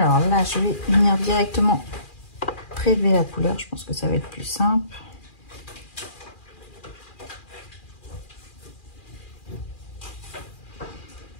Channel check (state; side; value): late; right; 2.4 ms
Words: là, je vais venir directement prélever la couleur. Je pense que ça va être plus simple.